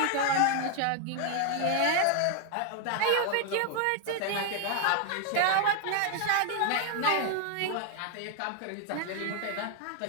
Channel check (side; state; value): both; different; correlation 0.00